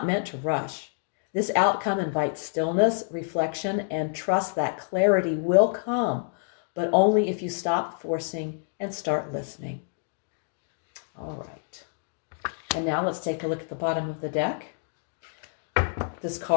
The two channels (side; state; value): right; silent; 60 dB below the other